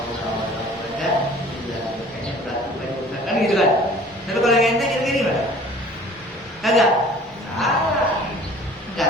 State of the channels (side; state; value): both; normal; correlation 0.49